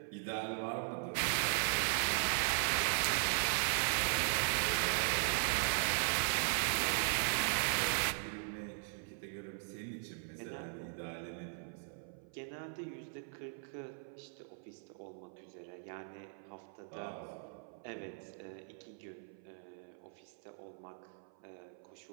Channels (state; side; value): silent; left; 52 dB below the other